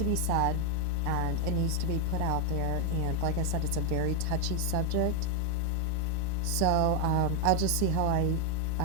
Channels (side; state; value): both; different; correlation 0.01